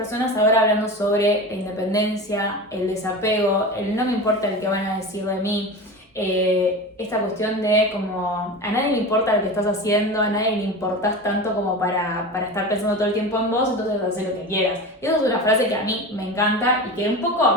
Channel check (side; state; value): both; normal; correlation 0.29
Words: ahora hablando sobre la independencia, el desapego, el no me importa el que van a decir de mí, esta cuestión de como a nadie le importa lo que estás haciendo, a nadie le importás tanto como para estar pensando todo el tiempo en vos, entonces haz lo que quieras. Y eso es una frase que a mí me encanta y que un